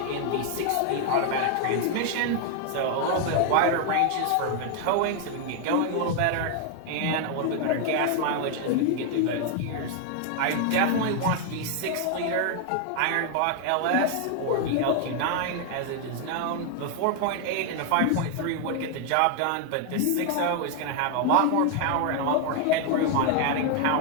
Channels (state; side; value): different; both; correlation 0.00